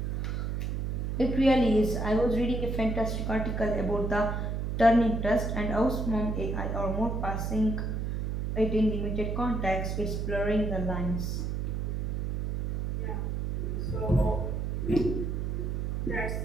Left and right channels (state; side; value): noise; right; hum, 1 dB below the sound